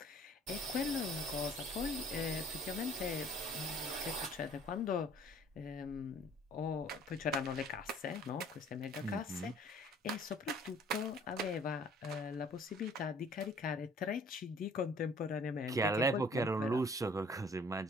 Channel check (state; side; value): normal; both; correlation 0.54